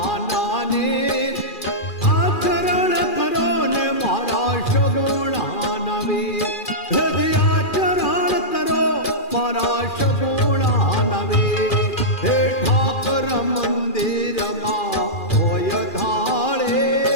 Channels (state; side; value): late; right; 2.4 ms